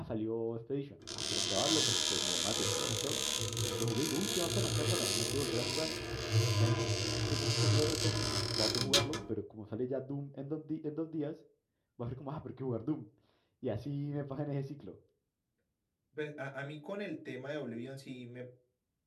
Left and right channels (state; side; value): identical; both; correlation 1.00